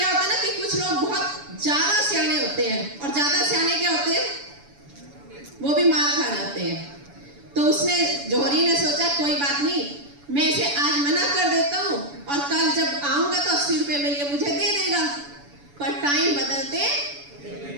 होता है ना कि कुछ लोग बहुत ज्यादा सियाने होते हैं, और ज्यादा सियाने क्या होते हैं, वो भी मार खा जाते हैं। तो उसने, जौहरी ने सोचा कोई बात नहीं, मैं इसे आज मना कर देता हूँ, और कल जब आऊंगा तो 80 रुपए में ये मुझे दे देगा। पर टाइम बदलते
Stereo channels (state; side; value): late; left; 7.0 ms